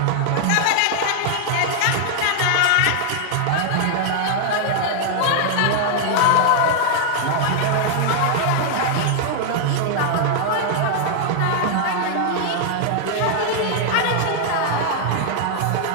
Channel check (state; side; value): different; both; correlation 0.00